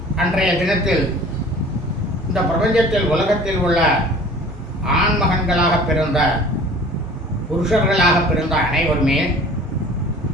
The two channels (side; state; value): both; normal; correlation 0.46